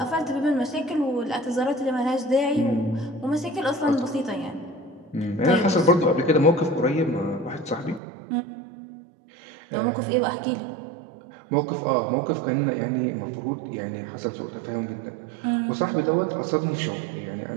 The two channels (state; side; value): drops out; left; at 8.0 s